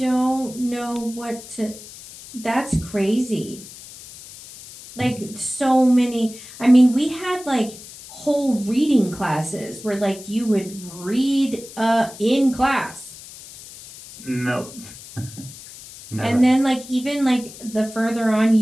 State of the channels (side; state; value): left; noise; hiss, 16 dB below the sound